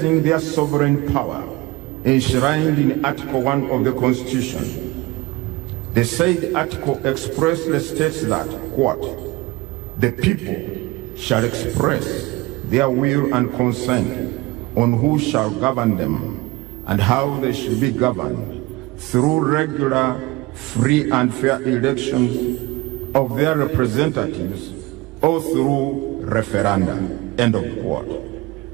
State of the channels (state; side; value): quieter; left; 21.1 dB